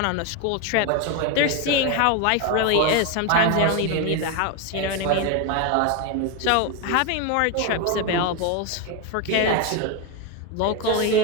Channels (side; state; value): both; different; correlation 0.02